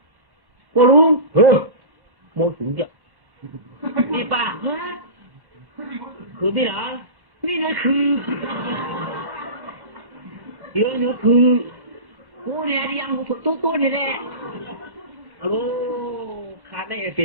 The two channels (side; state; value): left; late; 1.1 ms